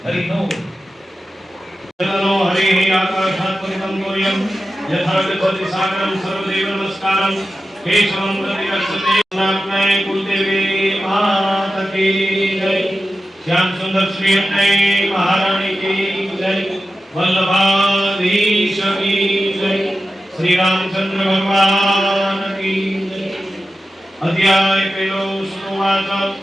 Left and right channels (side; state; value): both; normal; correlation 0.92